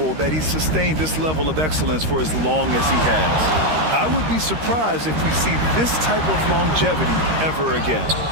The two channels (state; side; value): late; left; 13 ms